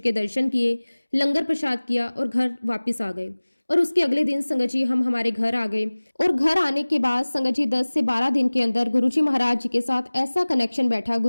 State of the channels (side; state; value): both; inverted; correlation -1.00